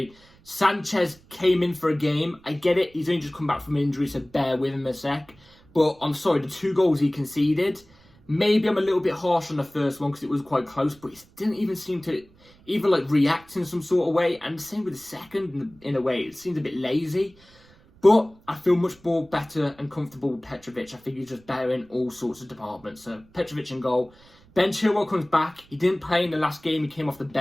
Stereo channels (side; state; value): right; noise; rumble, 28 dB below the sound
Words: Sanchez came in for a game. I get it, he's only just come back from injury, so bear with him a sec. But I'm sorry, the 2 goals he conceded, maybe I'm a little bit harsh on the first one because it was quite close, but he didn't even seem to even like react in some sort of way. And the same with the second, in a way, it seemed a bit lazy. But I feel much more better and comfortable with Petrovic. I think he's just better in all sorts of departments. So Petrovic in goal. Ben Chilwell comes back. He didn't play in the last game. He came off the